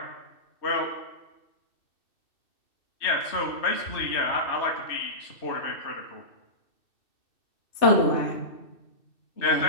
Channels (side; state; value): right; late; 2.6 ms